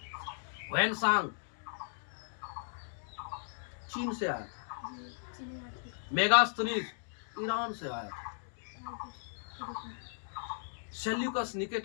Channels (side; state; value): right; silent; digital silence